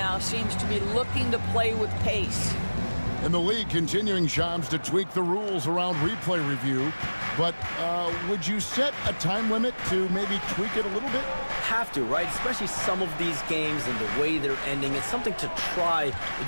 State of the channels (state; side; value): inverted; both; correlation -1.00